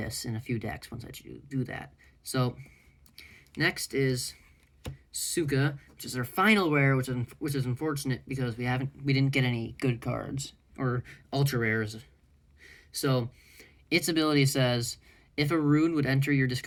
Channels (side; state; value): both; identical; correlation 1.00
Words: in a few decks once I do that. So next is Suka, which is our final rare, which is unfortunate because we didn't get any good cards or ultra rares. So, its ability says, if a rune would enter your